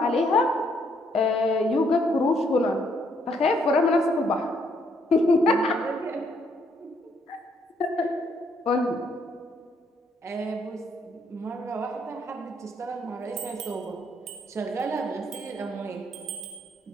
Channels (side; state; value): both; normal; correlation 0.70